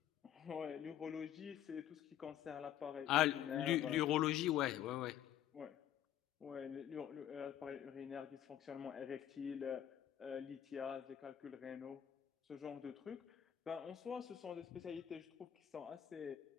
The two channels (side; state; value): right; quieter; 11.1 dB